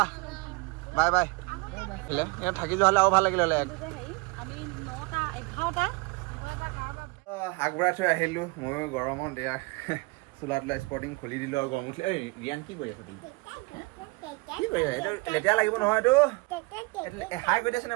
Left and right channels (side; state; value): left; quieter; 26.7 dB